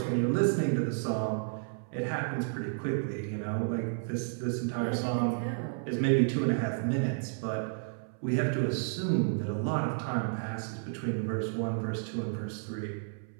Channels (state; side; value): silent; left; 57 dB below the other